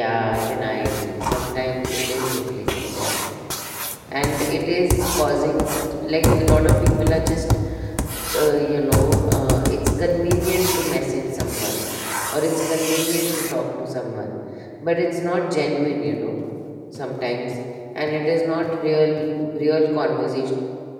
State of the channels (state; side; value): identical; both; correlation 1.00